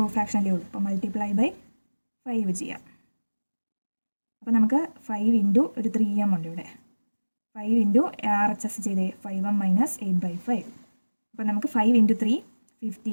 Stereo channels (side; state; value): both; inverted; correlation -1.00